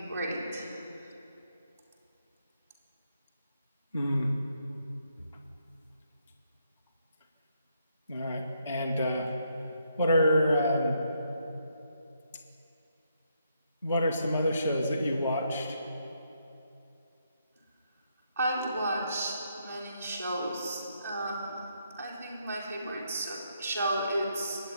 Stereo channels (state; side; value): inverted; both; correlation -0.76